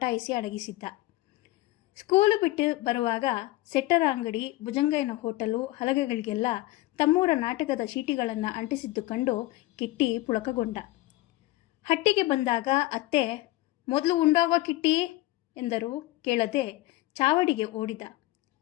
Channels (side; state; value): right; quieter; 18.3 dB